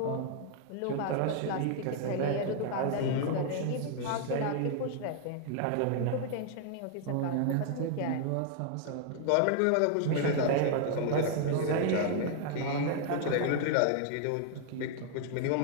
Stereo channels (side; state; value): both; different; correlation 0.00